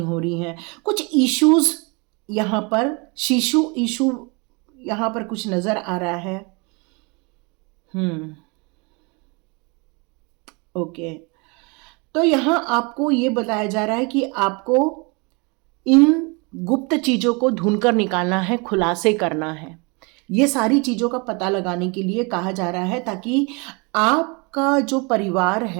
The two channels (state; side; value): quieter; left; 30.5 dB